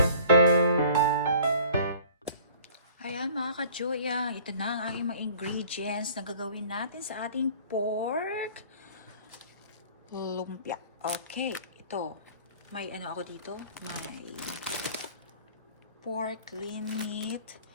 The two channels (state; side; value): inverted; both; correlation -0.49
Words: Ayan mga ka-joy, ito na ang aking mga ingredients na gagawin natin sa ating pork lumpia. Okay, ito. May ano ako dito? May pork lean meat.